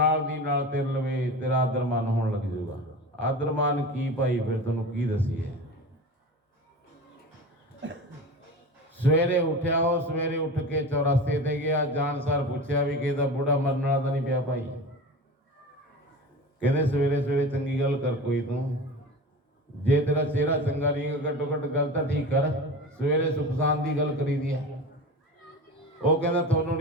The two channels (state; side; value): normal; both; correlation 0.31